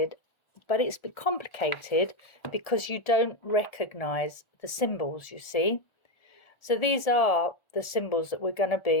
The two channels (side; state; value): right; late; 1.4 ms